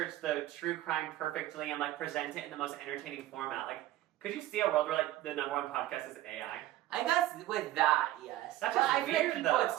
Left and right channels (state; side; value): quieter; left; 14.9 dB